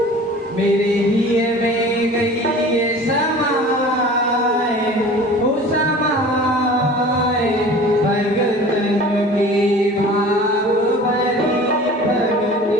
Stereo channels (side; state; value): both; normal; correlation 0.42